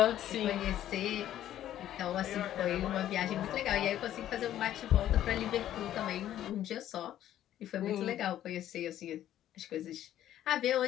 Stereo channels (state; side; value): quieter; right; 12.0 dB